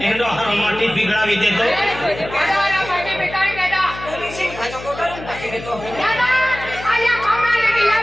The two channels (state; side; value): noise; left; hum, 13 dB below the sound